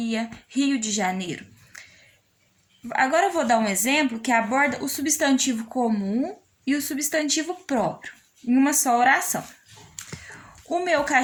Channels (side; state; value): both; identical; correlation 1.00